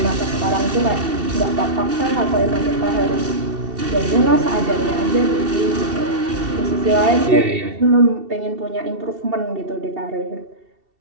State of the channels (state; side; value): late; left; 2.7 ms